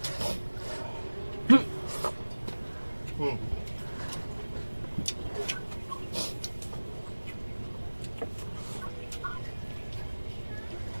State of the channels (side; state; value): both; inverted; correlation -1.00